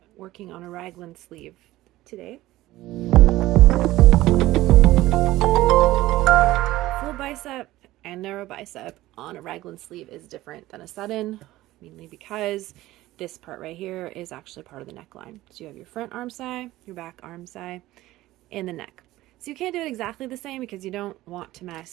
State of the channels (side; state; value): left; quieter; 16.6 dB